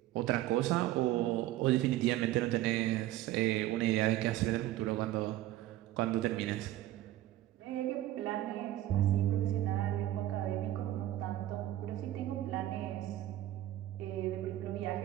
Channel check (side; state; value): left; quieter; 14.5 dB